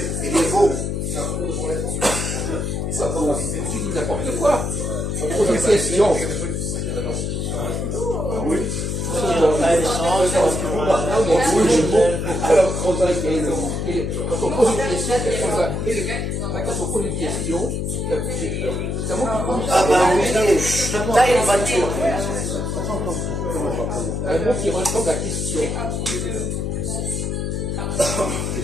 Il est beau. Tu dis n'importe quoi. On pose une question. Quand on pose une question, c'est un mot qui compte. Ah, ben oui, t'as une voiture. Un mot qui ressemble à question. Quel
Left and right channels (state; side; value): noise; left; hum, 2 dB below the sound